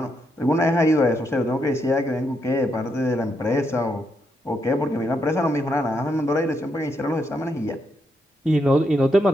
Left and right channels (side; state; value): both; normal; correlation 0.79